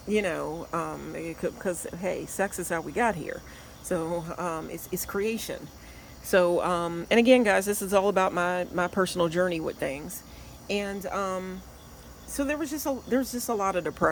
hey, sex is how we got here. So, it's creation. So, and again, guys, this is all about my personal journey with things. And so there's just a lot of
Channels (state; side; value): identical; both; correlation 1.00